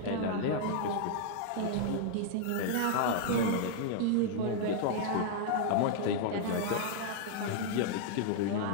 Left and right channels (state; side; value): different; both; correlation 0.00